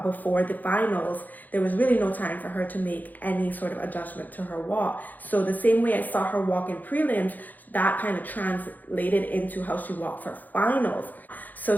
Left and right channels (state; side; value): late; right; 0.084 ms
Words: before the finals, there was really no time for her to make any sort of adjustment to her walk. So the same way I saw her walk in prelims, that kind of translated into how she walked for finals. So